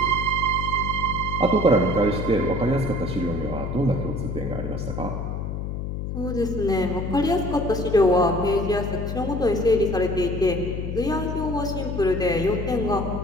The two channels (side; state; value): left; noise; hum, 4 dB below the sound